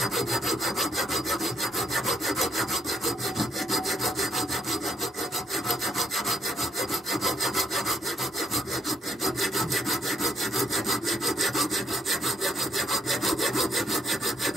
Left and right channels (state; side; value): normal; both; correlation 0.74